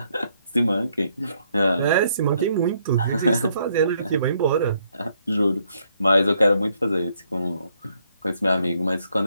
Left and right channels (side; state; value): both; inverted; correlation -0.72